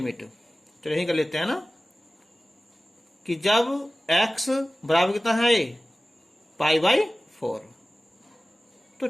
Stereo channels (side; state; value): both; normal; correlation 0.97